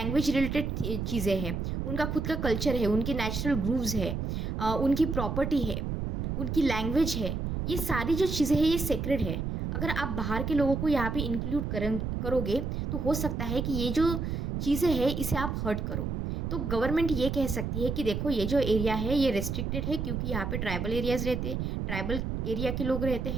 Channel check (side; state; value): right; noise; rumble, 2 dB below the sound